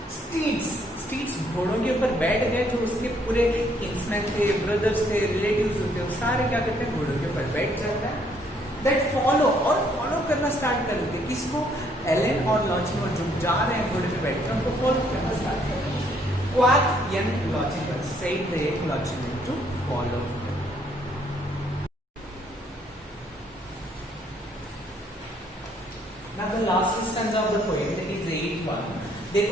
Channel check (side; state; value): both; normal; correlation 0.67